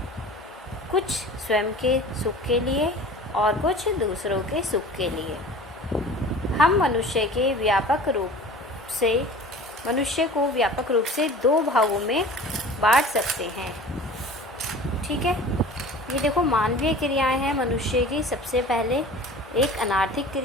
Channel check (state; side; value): normal; both; correlation 0.41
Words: कुछ स्वयं के सुख के लिए और कुछ दूसरों के सुख के लिए। हम मनुष्य को व्यापक रूप से दो भागों में बांट सकते हैं। ठीक है, ये देखो, मानवीय क्रियाएं हैं मनुष्य की। सबसे पहले एक अनार्थिक